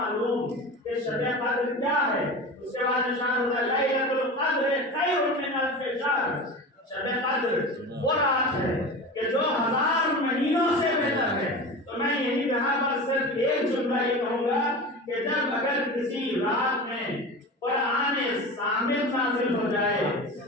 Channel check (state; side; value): normal; both; correlation 0.30